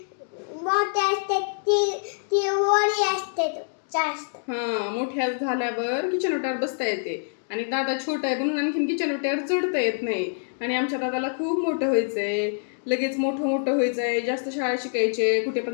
मोठे असतात ती वरी असते जास्त. हा, मोठ्या झाल्यावर किचन ओट्यावर बसता येते. आणि दादा छोटा आहे म्हणून आणखीन किचन ओट्यावर चढता येत नाही. आणि आमच्या दादाला खूप मोठं व्हायचंय, लगेच मोठं व्हायचंय, जास्त शाळा शिकायचे, कुठे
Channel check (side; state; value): right; silent; digital silence